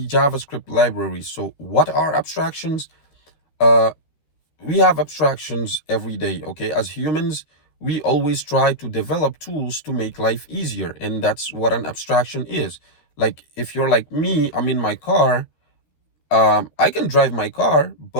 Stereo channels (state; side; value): late; right; 13 ms